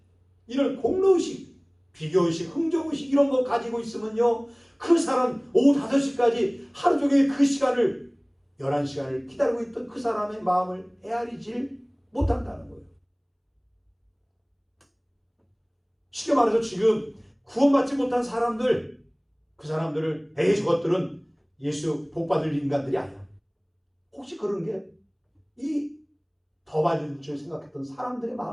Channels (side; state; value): both; identical; correlation 1.00